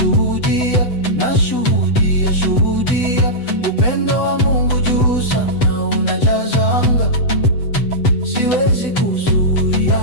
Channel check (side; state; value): right; late; 8.0 ms